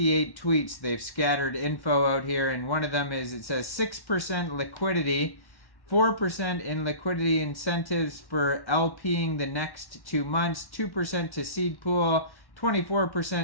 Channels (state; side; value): late; right; 1.1 ms